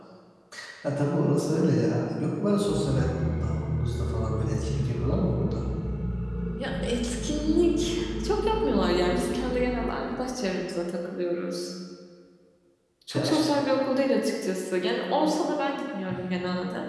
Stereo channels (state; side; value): identical; both; correlation 1.00